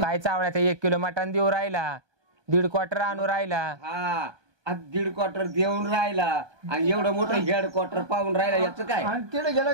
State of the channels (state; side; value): late; left; 1.2 ms